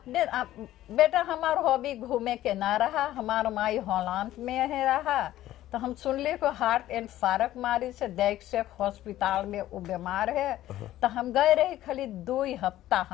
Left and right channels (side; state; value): right; quieter; 14.1 dB